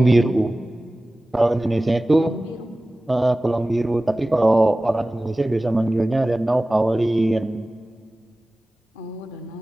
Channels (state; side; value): normal; both; correlation 0.97